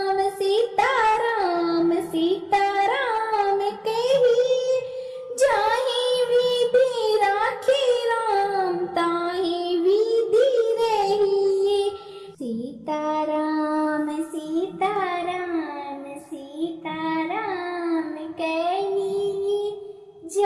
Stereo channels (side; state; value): both; identical; correlation 1.00